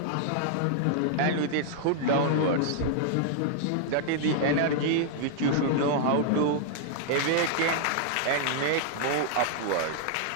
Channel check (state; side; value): different; both; correlation -0.01